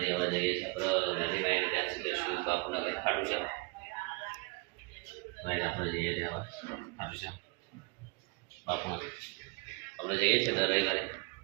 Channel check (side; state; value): left; quieter; 28.9 dB